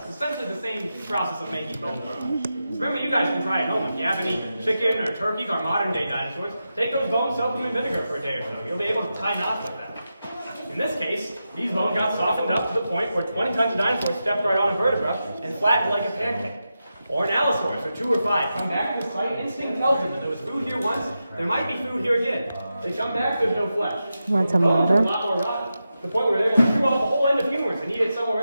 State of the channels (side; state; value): both; inverted; correlation -0.90